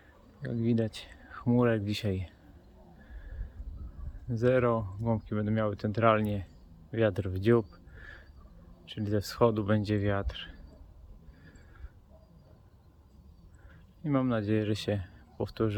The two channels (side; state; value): both; identical; correlation 1.00